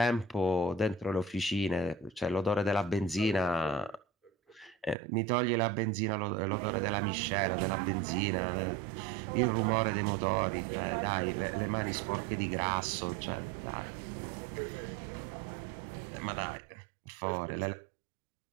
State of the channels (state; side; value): drops out; left; at 5.0 s